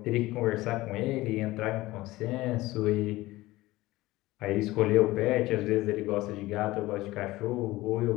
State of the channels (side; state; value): right; quieter; 18.5 dB